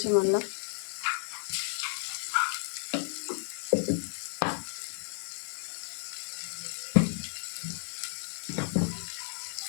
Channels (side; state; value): right; silent; digital silence